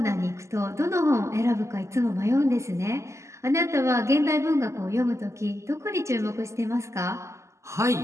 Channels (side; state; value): left; late; 0.14 ms